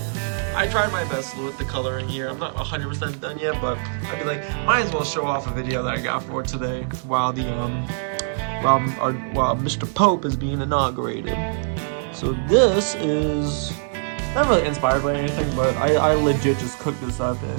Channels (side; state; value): left; silent; 63 dB below the other